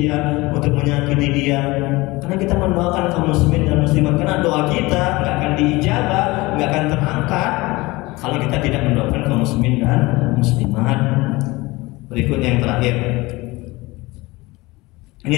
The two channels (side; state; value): right; quieter; 21.8 dB